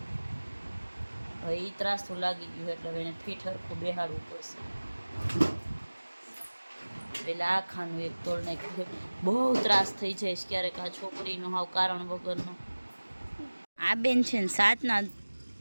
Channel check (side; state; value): both; inverted; correlation -1.00